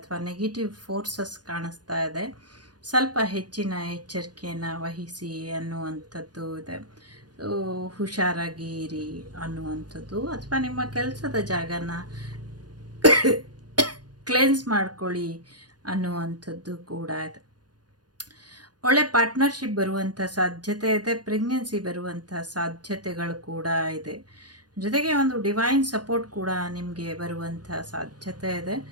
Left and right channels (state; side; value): late; left; 0.69 ms